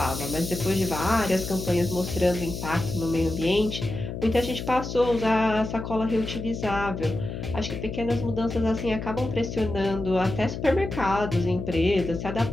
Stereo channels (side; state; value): left; noise; hum, 7 dB below the sound